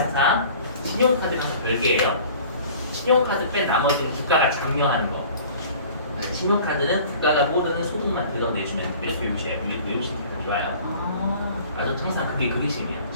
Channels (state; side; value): inverted; both; correlation -0.47